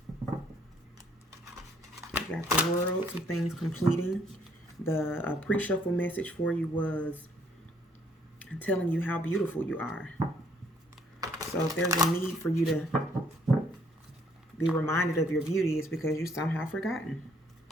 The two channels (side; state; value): both; normal; correlation 0.65